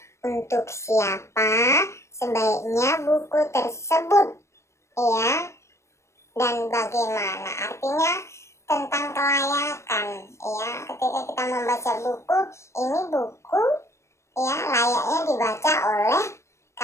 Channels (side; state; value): right; late; 0.13 ms